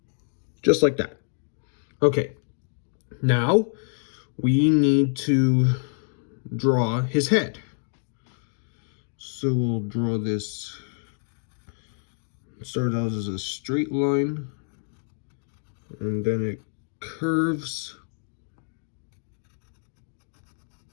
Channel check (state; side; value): silent; right; 60 dB below the other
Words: Just like that. Okay. Now we need to draw his head. So we'll draw this, start out as a straight line, and then it curves